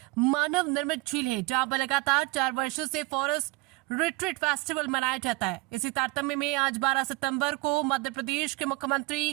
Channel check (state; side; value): quieter; left; 23.3 dB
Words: मानव निर्मित झील है, जहां पर लगातार 4 वर्षों से फॉरेस्ट रिट्रीट फेस्टिवल मनाया जाता है। इसी तारतम्य में आज 12 सितंबर को मध्य प्रदेश के